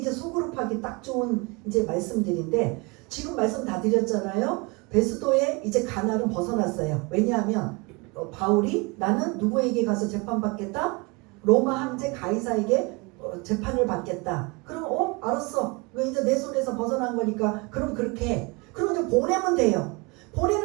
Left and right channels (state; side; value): quieter; left; 27.7 dB